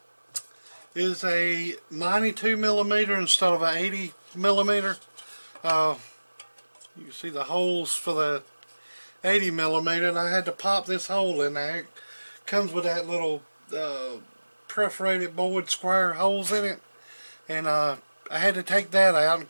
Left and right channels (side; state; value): both; inverted; correlation -1.00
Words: is a 92 millimeter instead of an 80 millimeter. You can see the holes for the 80 millimeter, and I had to pop this hole in there. It comes with that little perforated board square holes in it, and I had to take that out. And of